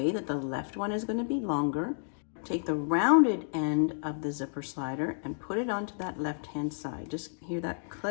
that the left one is going to be longer. Take the rounded end of the zipper slider and put it onto that left-hand side. Just hear that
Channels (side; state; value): right; silent; digital silence